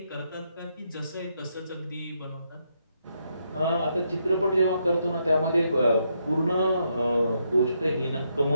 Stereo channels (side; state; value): both; inverted; correlation -0.78